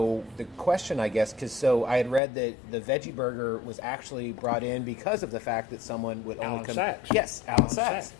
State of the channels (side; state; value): right; drops out; at 2.2 s